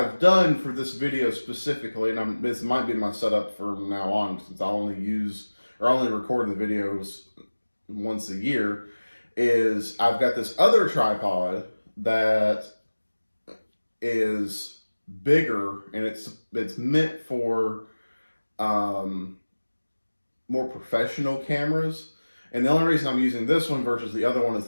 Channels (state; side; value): inverted; both; correlation -1.00